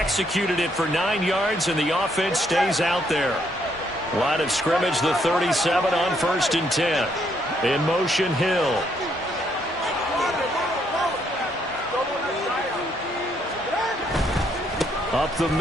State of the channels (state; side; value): normal; both; correlation 0.72